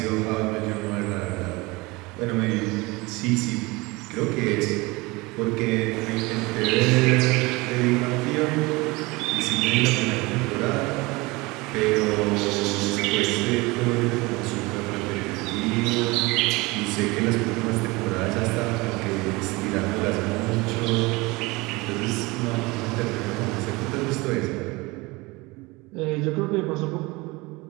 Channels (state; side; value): quieter; left; 23.5 dB